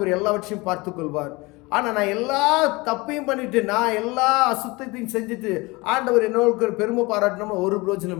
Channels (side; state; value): right; quieter; 24.0 dB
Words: எல்லாவற்றையும் பார்த்து கொள்வார். ஆனா நான் எல்லா தப்பையும் பண்ணிட்டு, நான் எல்லா அசுத்தத்தையும் செஞ்சுட்டு ஆண்டவர் என்னோட பெருமை பாராட்டணும் ஒரு